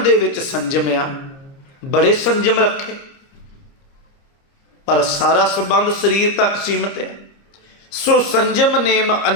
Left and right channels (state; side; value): late; right; 30 ms